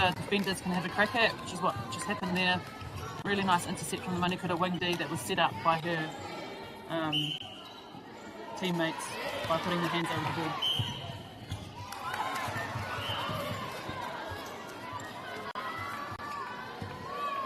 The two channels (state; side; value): identical; both; correlation 1.00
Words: defenders can have a crack at, which is what just happened there. Really nice intercept from the Manukura wing D that was set up by her teammates by putting their hands over the ball.